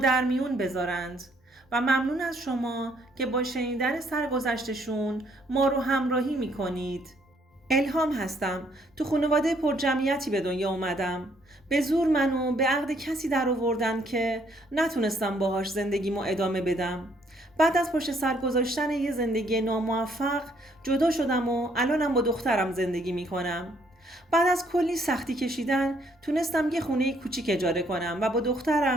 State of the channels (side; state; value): both; normal; correlation 0.67